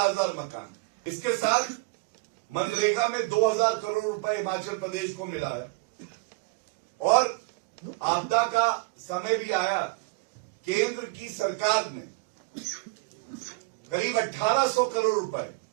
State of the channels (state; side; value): quieter; left; 26.2 dB